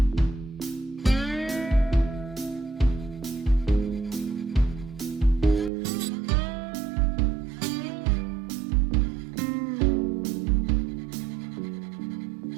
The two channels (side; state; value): left; drops out; at 5.7 s